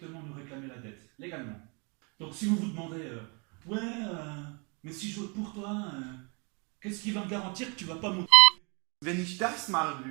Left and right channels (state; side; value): quieter; left; 33.0 dB